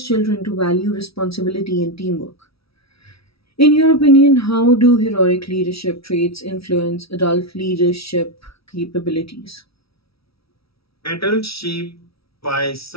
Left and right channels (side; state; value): right; late; 0.76 ms